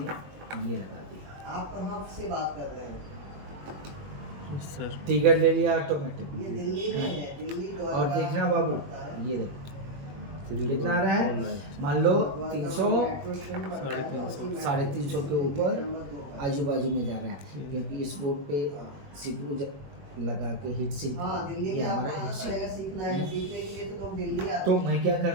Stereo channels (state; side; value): late; left; 21 ms